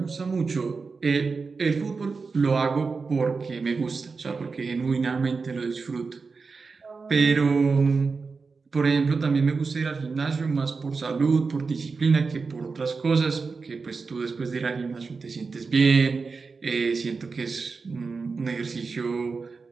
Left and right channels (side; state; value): left; quieter; 4.6 dB